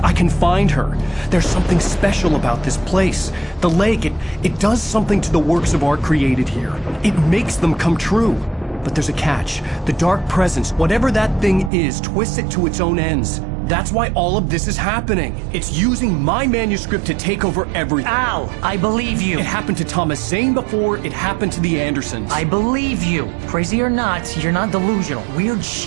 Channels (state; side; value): drops out; left; at 11.7 s